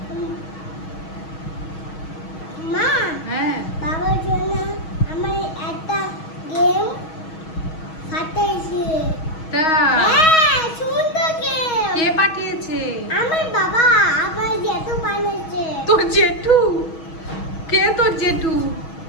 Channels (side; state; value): right; late; 6.3 ms